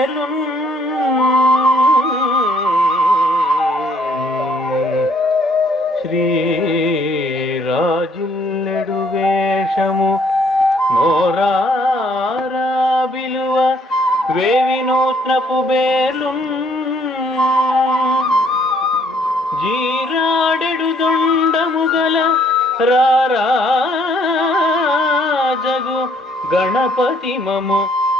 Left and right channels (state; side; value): normal; both; correlation 0.65